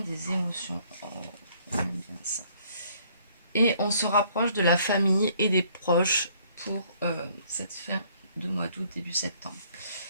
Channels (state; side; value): inverted; both; correlation -0.63